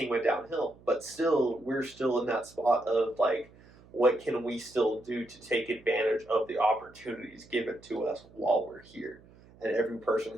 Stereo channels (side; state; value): right; noise; hum, 25 dB below the sound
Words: went downhill. But still, we're still in that spot of like, what can we still do to take advantage of the opportunities given to us while we're here? And every person